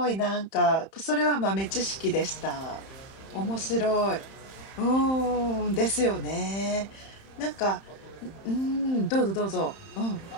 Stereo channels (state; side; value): late; right; 31 ms